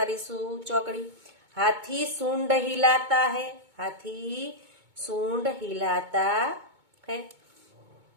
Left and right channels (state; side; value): late; left; 2.2 ms